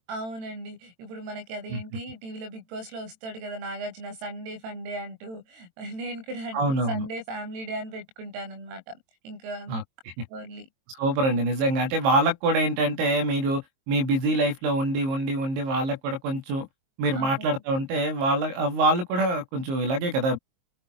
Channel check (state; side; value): late; left; 22 ms